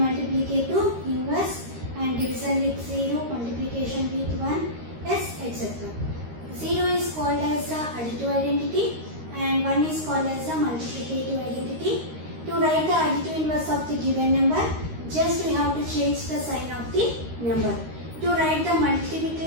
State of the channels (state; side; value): late; left; 13 ms